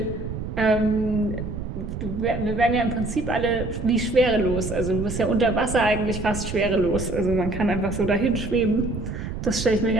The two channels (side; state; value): right; noise; rumble, 6 dB below the sound